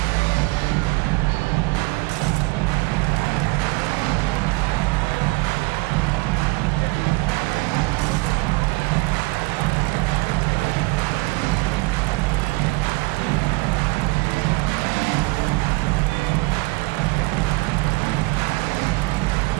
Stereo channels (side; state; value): left; quieter; 24.5 dB